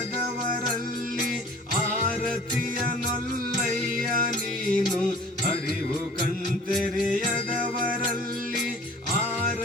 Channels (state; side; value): normal; both; correlation 0.48